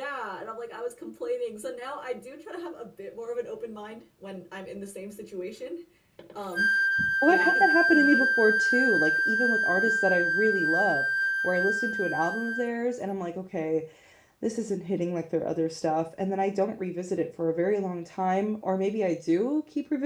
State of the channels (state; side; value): identical; both; correlation 1.00